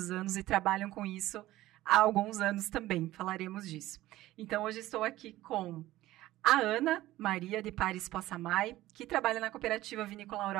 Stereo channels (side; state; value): left; quieter; 15.9 dB